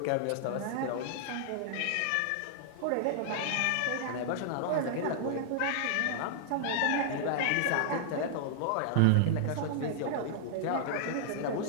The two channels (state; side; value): different; both; correlation -0.01